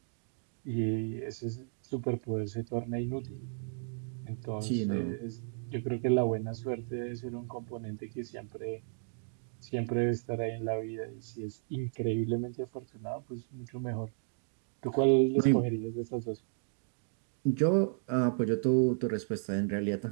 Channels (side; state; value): left; silent; digital silence